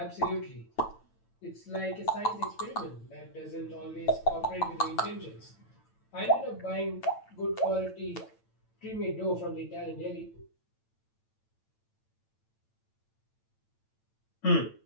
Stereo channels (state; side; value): late; right; 8.9 ms